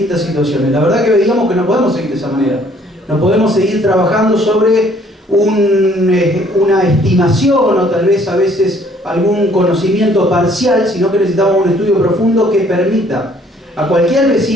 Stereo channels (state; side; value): normal; both; correlation 0.61